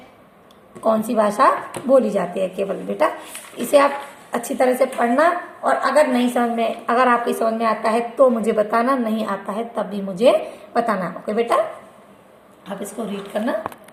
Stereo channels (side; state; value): both; identical; correlation 1.00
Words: कौन सी भाषा बोली जाती है केवल बेटा। इसे आप अच्छी तरह से पढ़ना, और अगर आपकी समझ में आता है तो मुझे बताना, नहीं आता है तब भी मुझे बताना। ओके बेटा, आप इसको रीड करना।